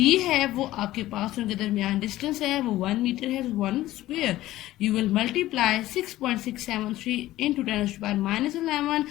है वो आपके पास उनके दरमियान डिस्टेंस है वो 1 मीटर है, 1 square. You will multiply 6.673 into 10⁻⁻11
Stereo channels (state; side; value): quieter; right; 15.6 dB